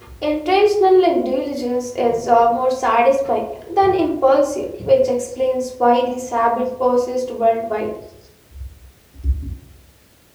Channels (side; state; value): both; identical; correlation 1.00